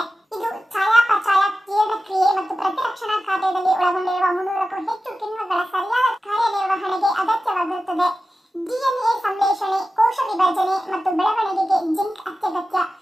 ಇದು ಚಯಾಪಚಯ, ಜೀರ್ಣಕ್ರಿಯೆ ಮತ್ತು ಪ್ರತಿರಕ್ಷಣಾ ಕಾರ್ಯದಲ್ಲಿ ಒಳಗೊಂಡಿರುವ 300ಕ್ಕೂ ಹೆಚ್ಚು ಕಿಣ್ವಗಳ ಸರಿಯಾದ ಕಾರ್ಯನಿರ್ವಹಣೆಗೆ ಅಗತ್ಯವಾಗಿರುತ್ತದೆ. DNA ಸಂಶ್ಲೇಷಣೆ, ಕೋಶ ವಿಭಜನೆ ಮತ್ತು ಬೆಳವಣಿಗೆಗೆ ಜಿಂಕ್ ಅತ್ಯಗತ್ಯ.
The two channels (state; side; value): normal; both; correlation 0.94